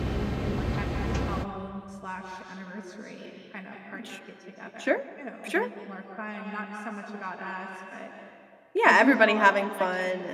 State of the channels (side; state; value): both; identical; correlation 1.00